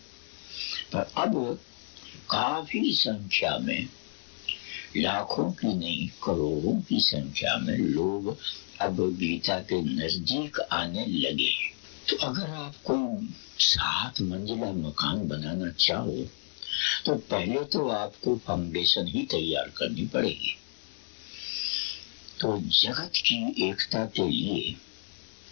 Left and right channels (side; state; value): right; silent; digital silence